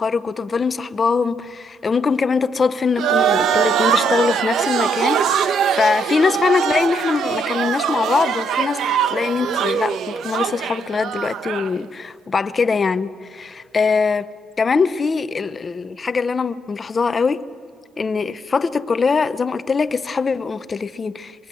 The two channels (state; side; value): normal; both; correlation 0.76